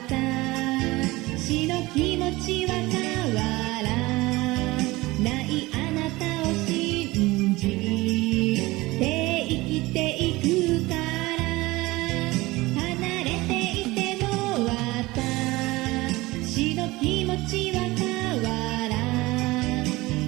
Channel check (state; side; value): quieter; left; 20.6 dB